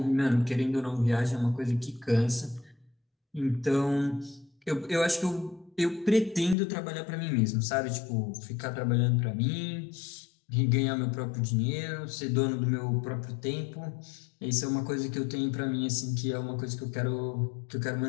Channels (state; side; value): drops out; right; at 6.6 s